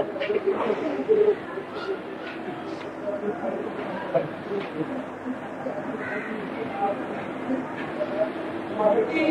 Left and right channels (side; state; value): both; identical; correlation 1.00